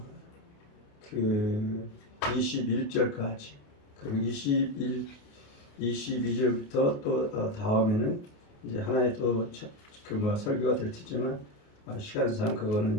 그 21절까지 그리고 22절부터 또 다음에는 이제 하나의 또 설교가 될 테지만 시간상 그거는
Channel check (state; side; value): late; right; 28 ms